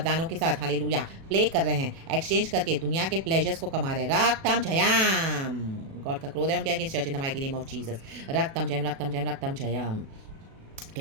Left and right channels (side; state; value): left; late; 36 ms